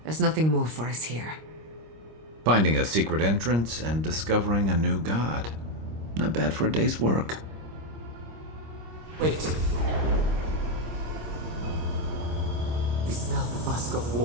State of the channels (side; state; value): left; late; 25 ms